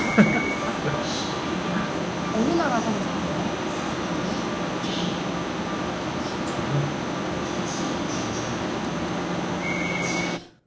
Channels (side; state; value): both; identical; correlation 1.00